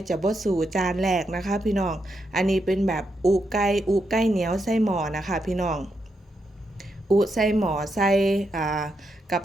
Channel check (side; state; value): both; normal; correlation 0.82